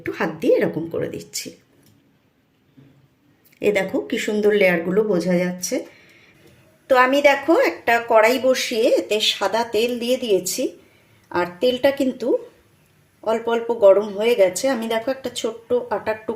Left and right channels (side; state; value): both; identical; correlation 1.00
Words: হাত দিয়ে এরকম করে দিচ্ছি। এ দেখো কি সুন্দর লেয়ারগুলো বোঝা যাচ্ছে। তো আমি দেখো একটা কড়াই বসিয়ে এতে সাদা তেল দিয়ে দিয়েছি, আর তেলটা কিন্তু অল্প অল্প গরম হয়ে গেছে। আমি দেখো একটা ছোট্ট আটার